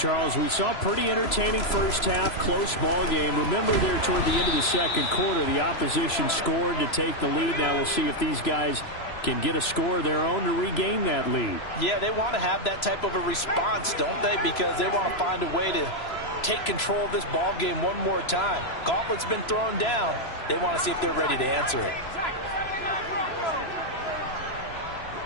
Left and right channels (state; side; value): late; right; 3.0 ms